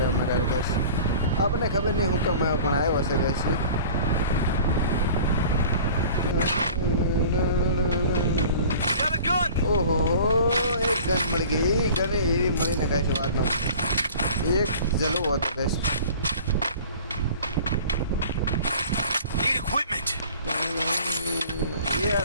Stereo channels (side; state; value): both; inverted; correlation -0.44